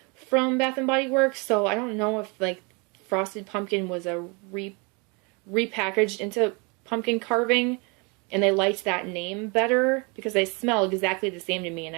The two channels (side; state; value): left; quieter; 31.1 dB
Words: from Bath & Body Works, so I don't know if like Frosted Pumpkin was a repackaged into pumpkin carving, and they liked that name better because they smell exactly the same to me, and